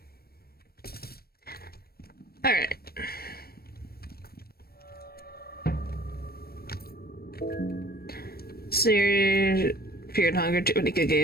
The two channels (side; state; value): right; late; 0.44 ms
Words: Alright. Fear and Hunger, too many good